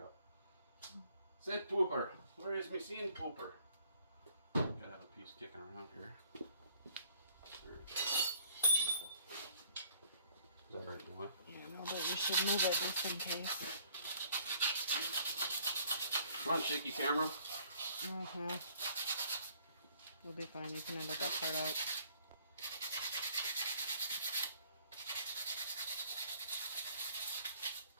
Said pooper. Where is me seeing pooper? Gotta have a piece kicking around here. There it is. Is that right, boy? Yeah, no, but you should move it just in case. Come on, shaky camera. Uh-huh. We'll be fine. You can edit that part out.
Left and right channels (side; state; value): both; inverted; correlation -0.59